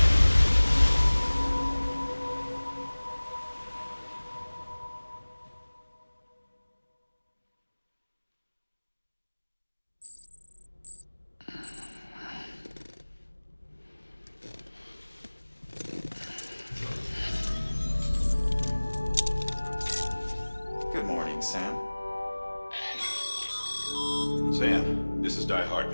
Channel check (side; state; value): both; inverted; correlation -1.00